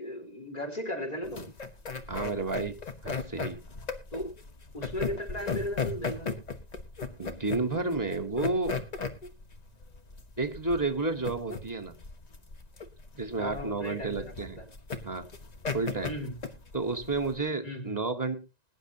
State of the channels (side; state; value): right; late; 1.9 ms